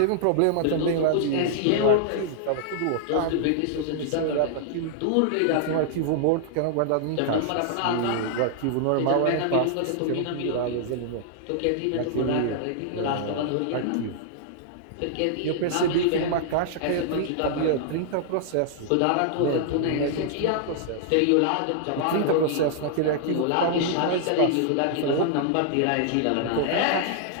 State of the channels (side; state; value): both; different; correlation -0.01